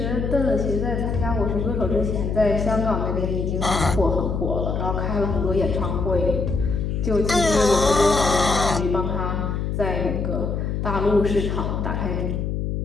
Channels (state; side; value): noise; left; hum, 1 dB below the sound